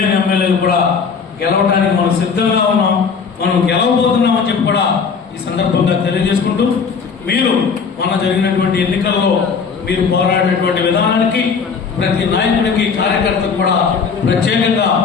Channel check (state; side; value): quieter; right; 5.7 dB